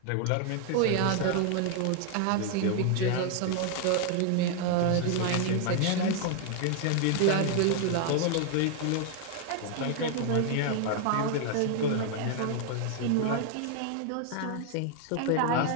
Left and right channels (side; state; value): both; different; correlation 0.00